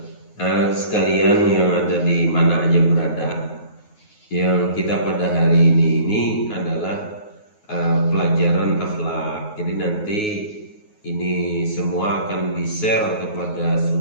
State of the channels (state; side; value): late; right; 9.4 ms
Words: Sekalian yang ada di mana aja berada, yang kita pada hari ini adalah pelajaran akhlak. Jadi nanti ini semua akan di-share kepada